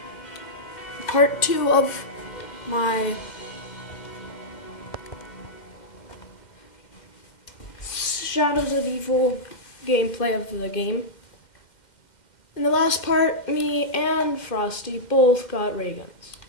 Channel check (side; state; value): right; late; 2.1 ms